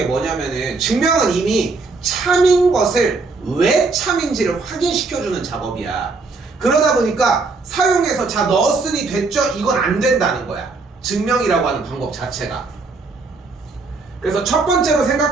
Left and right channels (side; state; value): left; quieter; 4.0 dB